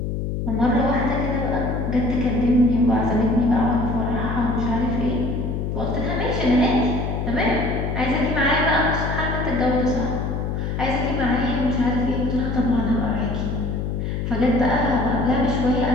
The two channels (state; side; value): noise; left; hum, 2 dB below the sound